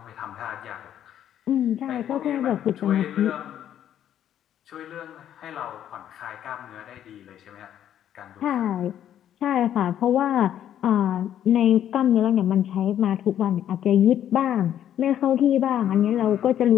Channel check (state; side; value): quieter; right; 10.6 dB